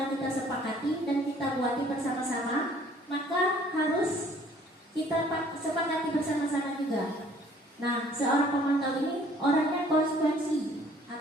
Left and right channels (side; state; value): both; normal; correlation 0.57